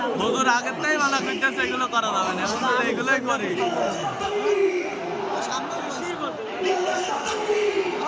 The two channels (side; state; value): both; identical; correlation 1.00